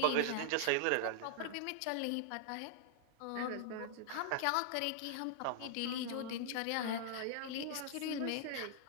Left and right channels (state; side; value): different; both; correlation 0.00